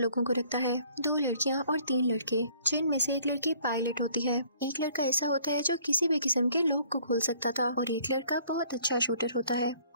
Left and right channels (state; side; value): inverted; both; correlation -0.59